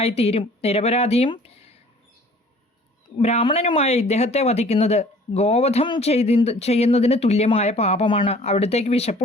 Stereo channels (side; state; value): both; normal; correlation 0.52